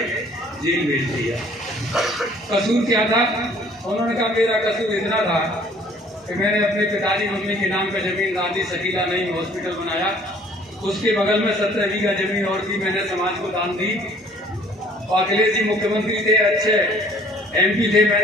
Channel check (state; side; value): normal; both; correlation 0.56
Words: जेल भेज दिया। कसूर क्या था? उन्होंने कहा मेरा कसूर इतना था कि मैंने अपने पिताजी मम्मी के नाम पर जमीन दादी शकीला नहीं हॉस्पिटल बनाया, उसके बगल में 17 बीघा जमीन और थी, मैंने समाज को दान दी। और अखिलेश जी मुख्यमंत्री थे, अच्छे MP थे,